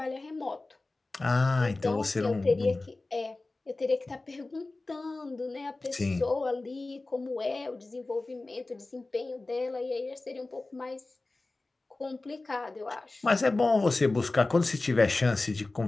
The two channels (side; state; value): right; quieter; 3.2 dB